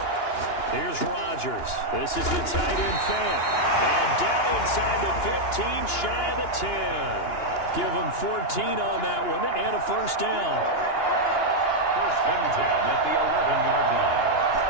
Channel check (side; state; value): right; late; 2.9 ms